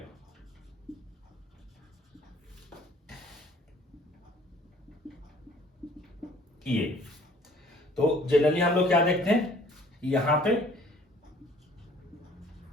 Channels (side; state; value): both; normal; correlation 0.55